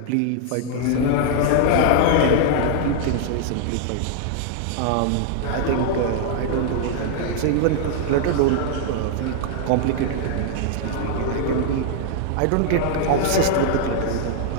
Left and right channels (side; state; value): both; different; correlation -0.01